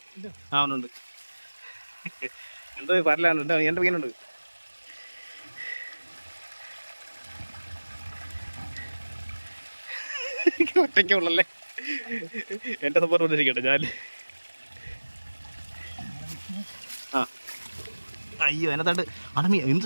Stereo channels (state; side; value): inverted; both; correlation -1.00